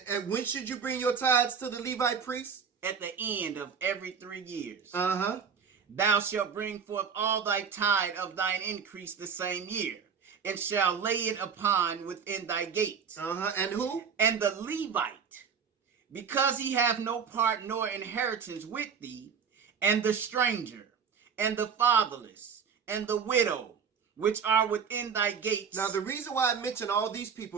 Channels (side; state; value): left; quieter; 6.5 dB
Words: And when should you bring your tithes to the Levite priest? At the end of every 3 years. Uh-huh. Thou shalt bring forth all thy tithe of thine increase the same year, and shall lay it upon within thy gates. Uh-huh. And who? And the Levite because he hath no part nor inheritance with thee, and the stranger, and the fatherless, and the widow, which are within thy gates. Now, the reason why I mention all these